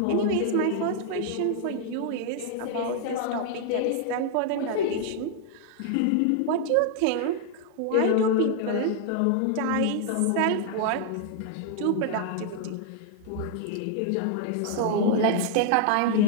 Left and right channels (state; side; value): different; both; correlation 0.00